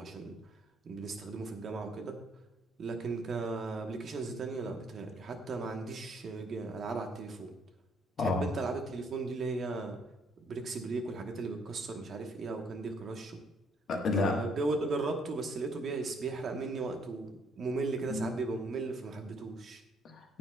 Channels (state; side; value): normal; both; correlation 0.67